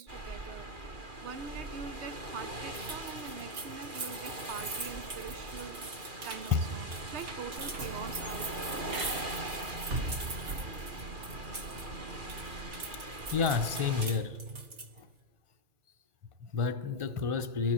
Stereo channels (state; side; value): late; left; 2.9 ms